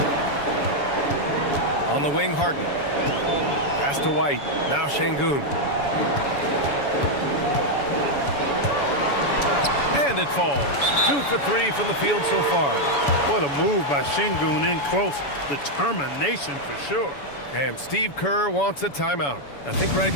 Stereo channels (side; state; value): right; late; 7.0 ms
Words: On the wing, Harden. Pass to White. Now Şengün. And it falls. 2 for 3 from the field so far. What a move by Şengün in close. Determination for sure. And Steve Kerr wants a timeout. I think right